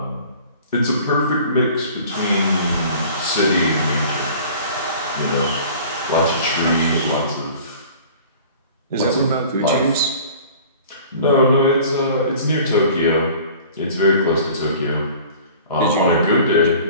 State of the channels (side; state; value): both; inverted; correlation -0.46